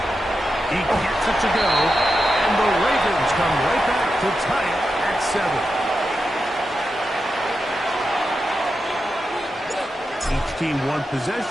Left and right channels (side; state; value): both; normal; correlation 0.89